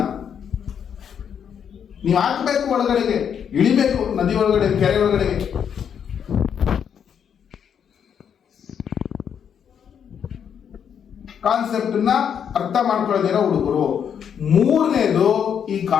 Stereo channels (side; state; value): right; quieter; 8.0 dB